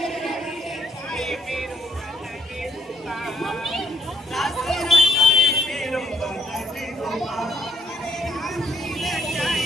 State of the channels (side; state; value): both; normal; correlation 0.68